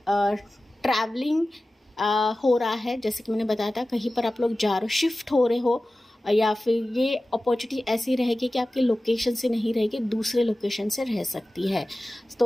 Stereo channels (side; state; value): both; normal; correlation 0.96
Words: ट्रैवलिंग हो रहा है, जैसे कि मैंने बताया था कहीं पर आप लोग जा रहे हो, शिफ्ट हो रहे हो, या फिर ये अपॉर्चुनिटी ऐसी रहेगी कि आपके लोकेशन से नहीं रहेगी, दूसरे लोकेशन से रह सकती है।